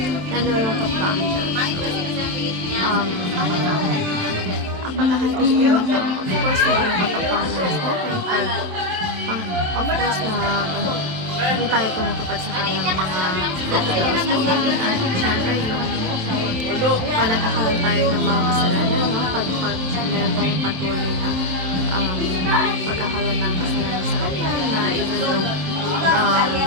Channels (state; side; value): late; left; 27 ms